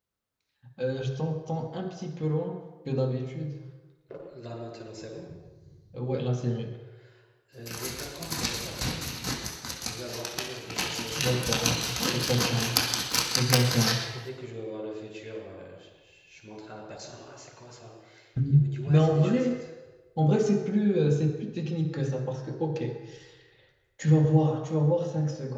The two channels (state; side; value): identical; both; correlation 1.00